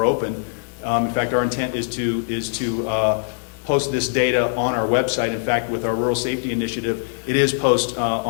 open. In fact, our intent is to post this data on our website. In fact, with our rural safety initiative, it is posted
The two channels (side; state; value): right; silent; digital silence